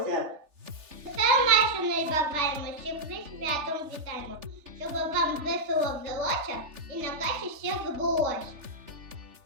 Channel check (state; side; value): late; left; 3.4 ms